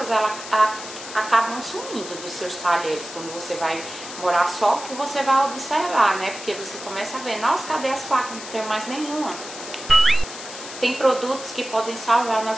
acabam sumindo dos seus talheres quando você vai morar só, que você vai observar, né? Porque você começa a ver, nossa, cadê as facas? Não tem mais nenhuma. Tem produtos que podem salvar a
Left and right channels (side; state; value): left; noise; hiss, 12 dB below the sound